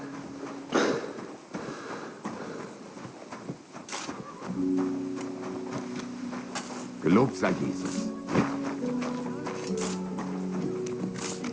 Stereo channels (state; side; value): identical; both; correlation 1.00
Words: Gelobt sei Jesus.